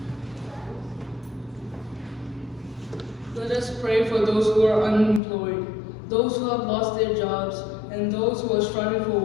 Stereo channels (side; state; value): right; drops out; at 5.2 s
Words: Let us pray for those who are unemployed, those who have lost their jobs, and those who are struggling for